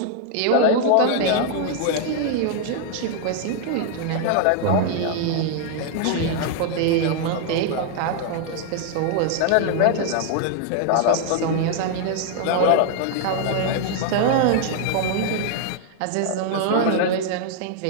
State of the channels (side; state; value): both; different; correlation 0.00